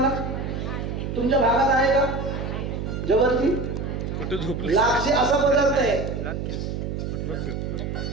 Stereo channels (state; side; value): noise; right; hum, 4 dB below the sound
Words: तुमच्या भागात आहे का? जवळची लापसी असा पदार्थ आहे।